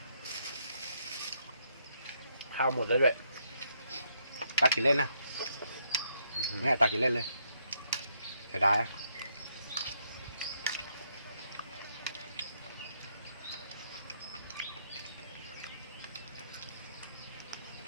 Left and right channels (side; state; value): both; inverted; correlation -0.75